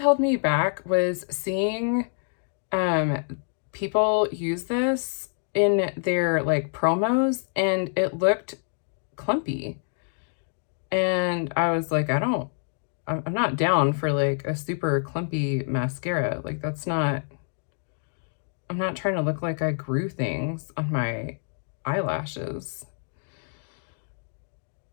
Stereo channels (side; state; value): right; silent; digital silence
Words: me back was seeing people use this in their like promos, and it looked clumpy. And I was like, I'm not down for like a super clumpy mascara. Like that's not, I'm not trying to look like I grew things on my eyelashes.